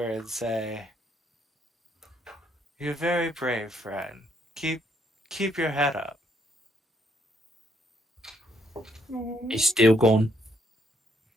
and say, "You're very brave, friend. Keep your head up." He's still gone.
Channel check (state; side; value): normal; both; correlation 0.72